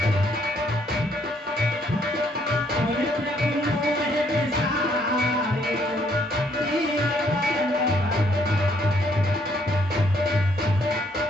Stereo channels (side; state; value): both; normal; correlation 0.67